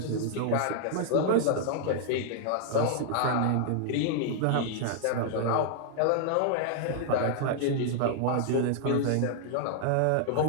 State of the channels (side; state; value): both; different; correlation 0.00